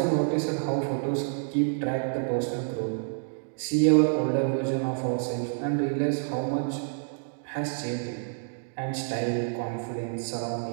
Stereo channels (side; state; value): left; silent; digital silence